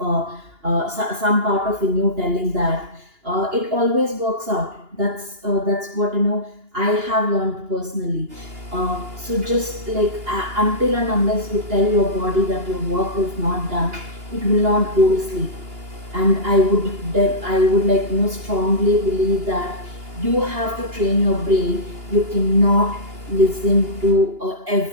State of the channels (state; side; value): late; left; 2.8 ms